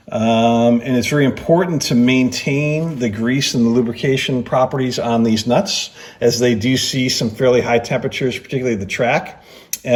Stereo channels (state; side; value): identical; both; correlation 1.00